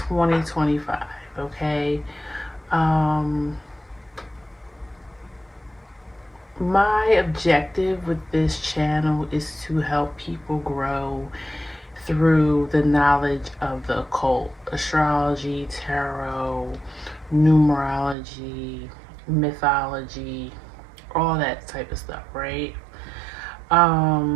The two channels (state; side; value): drops out; left; at 18.2 s